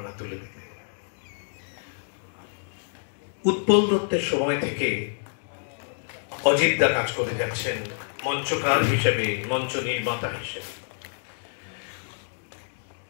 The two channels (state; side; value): silent; right; digital silence